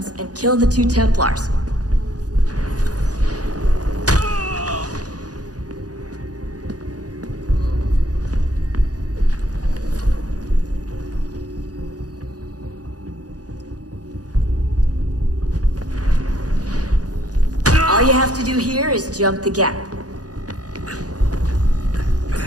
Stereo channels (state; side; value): late; left; 0.68 ms